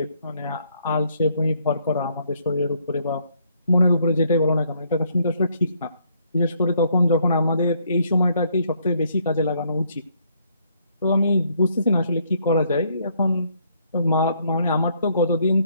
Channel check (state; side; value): inverted; both; correlation -0.69